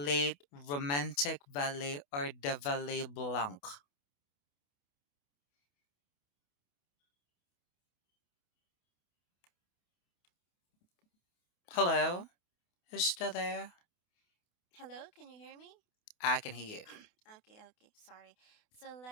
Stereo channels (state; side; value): late; right; 28 ms